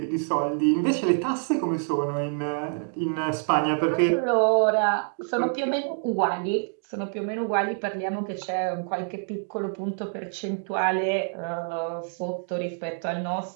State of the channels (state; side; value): silent; left; 61 dB below the other